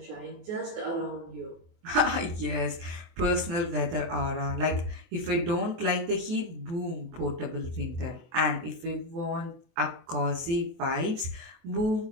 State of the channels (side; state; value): left; late; 24 ms